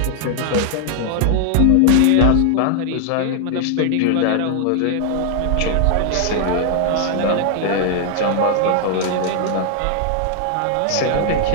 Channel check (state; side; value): different; both; correlation 0.00